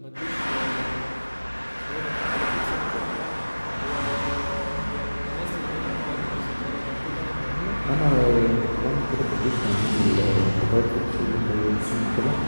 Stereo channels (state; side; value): inverted; both; correlation -1.00